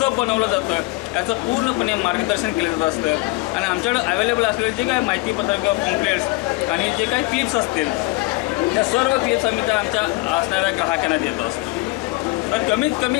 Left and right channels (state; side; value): quieter; right; 21.9 dB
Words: बनवलं जातं याचं पूर्णपणे मार्गदर्शन केलं जात असतं. आणि आमच्याकडे अवेलेबल असलेले जे काही माहितीपत्रक किंवा पॉम्पलेट्स आणि जे काही क्लिप्स असतील त्या सर्व क्लिप्स आम्ही त्या आमच्या असणाऱ्या ग्राहकांना देत असतो. तर कमीत कमी